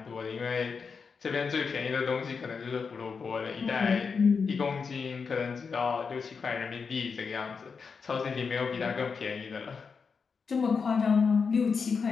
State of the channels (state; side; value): quieter; right; 5.4 dB